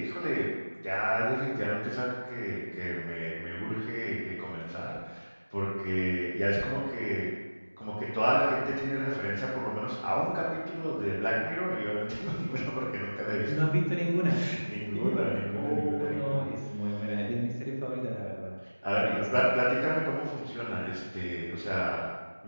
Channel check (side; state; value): both; inverted; correlation -1.00